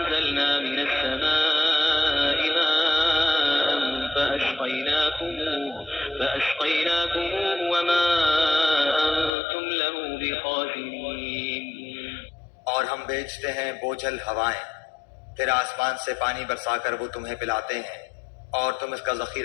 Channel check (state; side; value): drops out; right; at 9.3 s